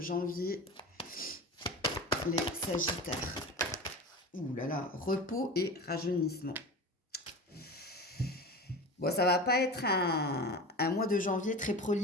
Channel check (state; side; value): normal; both; correlation 0.31